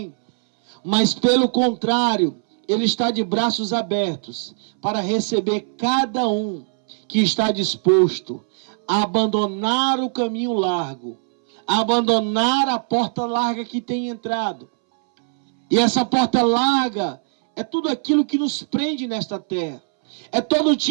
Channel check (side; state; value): left; silent; 65 dB below the other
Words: mas pelo contrário, ele está de braços abertos para receber cada um que está disposto a abandonar o caminho largo, a abandonar a porta larga que tem entrado. E essa porta larga é tudo aquilo que nos prende nesta terra. É todo